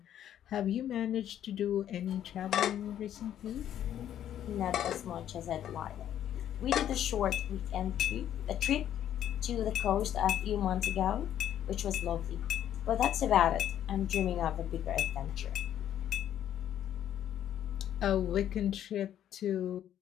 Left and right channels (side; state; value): right; quieter; 10.8 dB